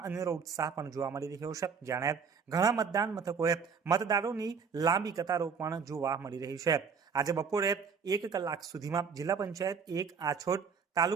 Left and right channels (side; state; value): left; quieter; 6.0 dB